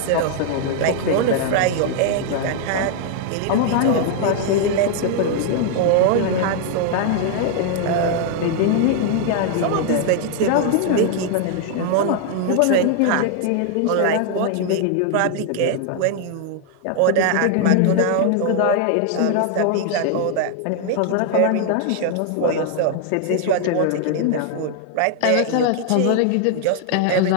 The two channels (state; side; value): different; both; correlation 0.00